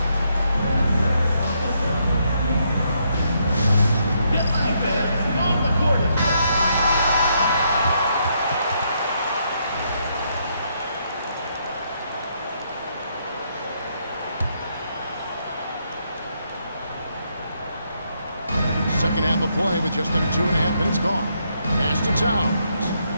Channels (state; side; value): inverted; both; correlation -0.76